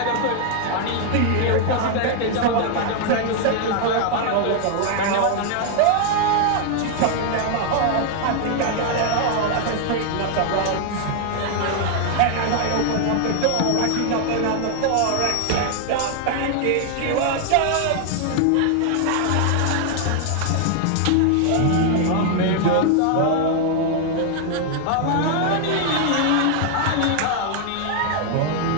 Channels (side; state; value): both; different; correlation 0.00